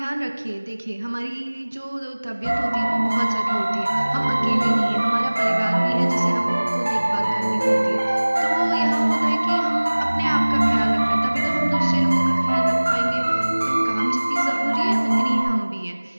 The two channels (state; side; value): inverted; both; correlation -1.00